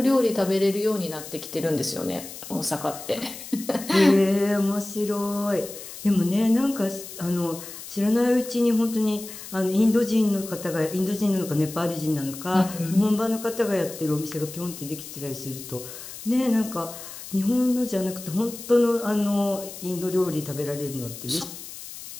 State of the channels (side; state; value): left; noise; hiss, 13 dB below the sound